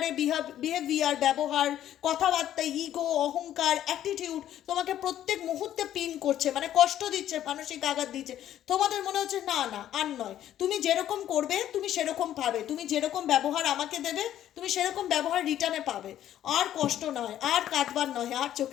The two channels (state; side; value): quieter; right; 11.7 dB